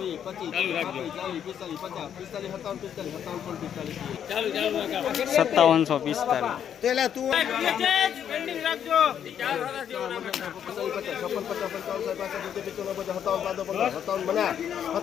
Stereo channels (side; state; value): right; quieter; 9.0 dB